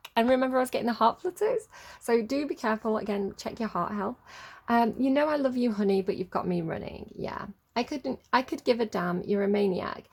And remember, I was getting the heart flutters. So do be careful. Again, check your heart health. You know I love you, honey, but you've got me running. Yeah. I could give a damn, you're a maniac.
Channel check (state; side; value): identical; both; correlation 1.00